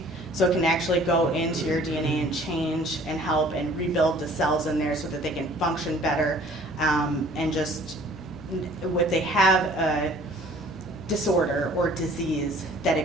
So it can actually go into your DNA and change and help and rebuild the cells in there so that they can function better. And just if they have a disorder or disease, that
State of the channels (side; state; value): both; normal; correlation 0.52